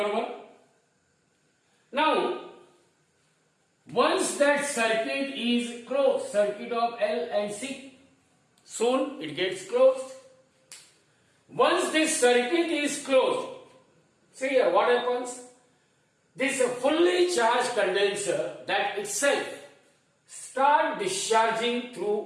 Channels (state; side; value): identical; both; correlation 1.00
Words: 1. Now, once that circuit is closed, circuit of L and C, soon it gets closed. Once this circuit is closed, see here what happens? This fully charged condenser that itself start discharging